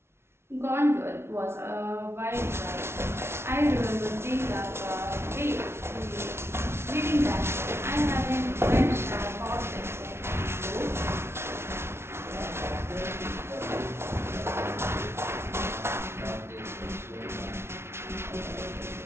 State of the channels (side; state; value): left; late; 0.12 ms